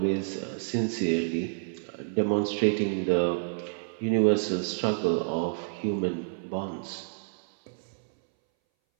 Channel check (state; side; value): silent; left; 59 dB below the other